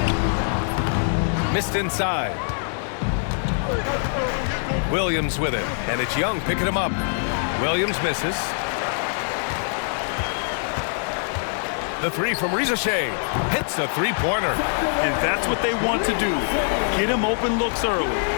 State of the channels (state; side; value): silent; right; digital silence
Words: Missed inside. Williams with it, and it's Young picking him up. Williams misses. The 3 from Reza Shea hits the three-pointer. And that's what they want to do. Get him open looks early.